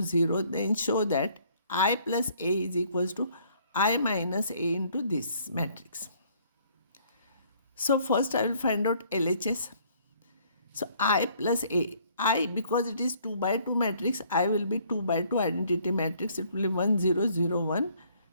0, then show that I plus A is equals to I minus A into this matrix. So first I will find out LHS. So I plus A. I, because it is 2 by 2 matrix, I will be 2 by 2 identity matrix. It will be 1 0 0 1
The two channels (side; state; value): both; inverted; correlation -0.62